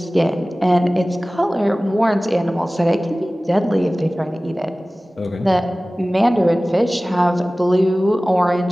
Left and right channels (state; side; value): normal; both; correlation 0.98